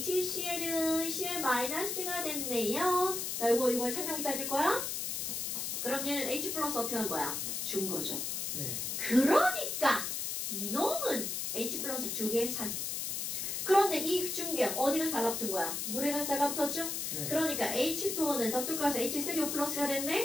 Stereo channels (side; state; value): left; noise; hiss, 2 dB below the sound